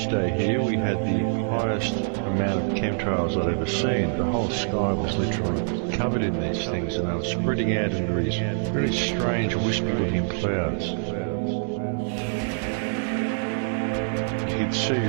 here we had the highest amount of chemtrails I'd ever seen. The whole sky was literally covered in these things, and they were spreading out into these very strange wispy-looking clouds. You could see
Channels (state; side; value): silent; left; digital silence